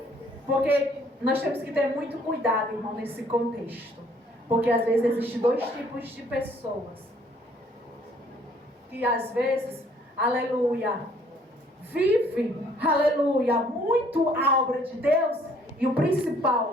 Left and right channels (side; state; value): both; normal; correlation 0.61